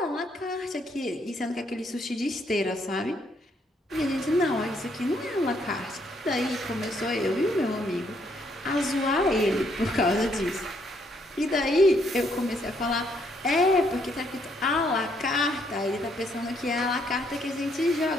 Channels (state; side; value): normal; both; correlation 0.71